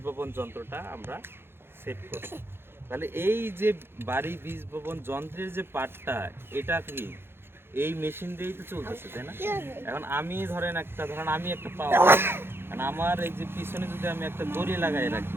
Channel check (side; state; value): left; late; 0.11 ms